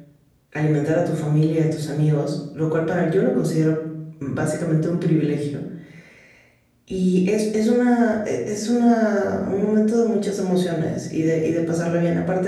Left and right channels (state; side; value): identical; both; correlation 1.00